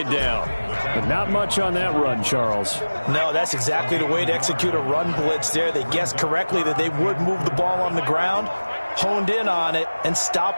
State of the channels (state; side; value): inverted; both; correlation -1.00